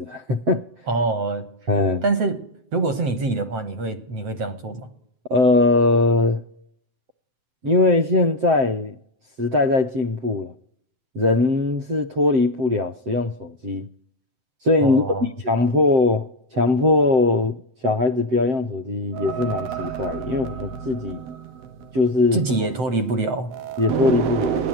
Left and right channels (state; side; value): late; left; 7.8 ms